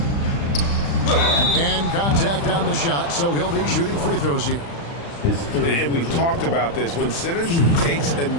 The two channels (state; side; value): late; right; 35 ms